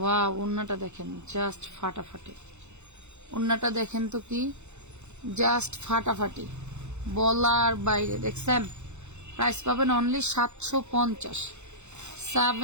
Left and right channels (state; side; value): late; left; 0.83 ms